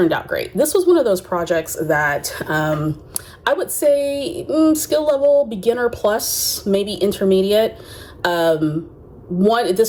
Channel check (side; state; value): both; identical; correlation 1.00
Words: out great. This was one of those projects that I would say skill level beginner plus, maybe intermediate.